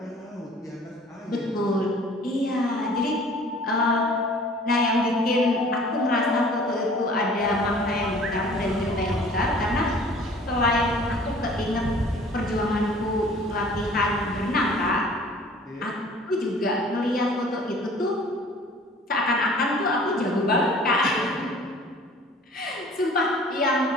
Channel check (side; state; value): both; normal; correlation 0.50